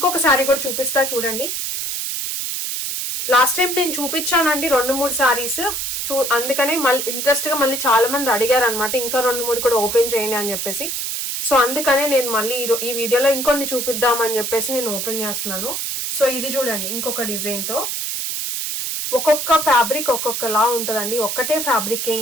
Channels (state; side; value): noise; right; hiss, 3 dB below the sound